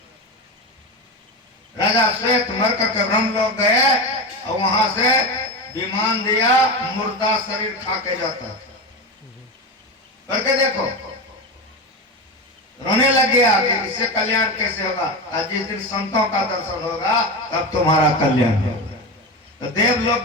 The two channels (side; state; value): both; normal; correlation 0.21